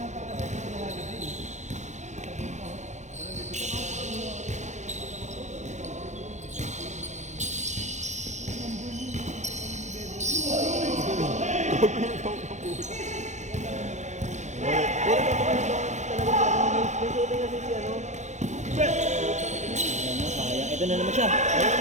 Ito na naman siya.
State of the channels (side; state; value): left; late; 0.34 ms